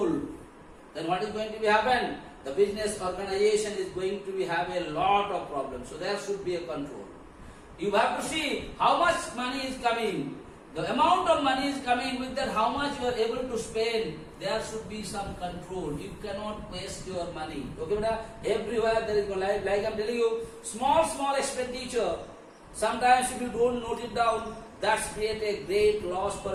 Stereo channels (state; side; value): identical; both; correlation 1.00